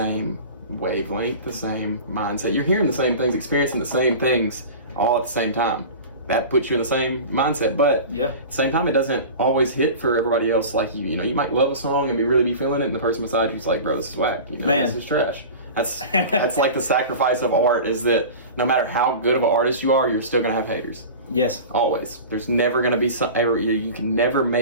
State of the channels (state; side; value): inverted; both; correlation -0.34